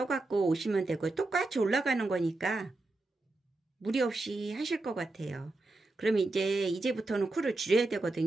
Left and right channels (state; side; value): quieter; left; 3.0 dB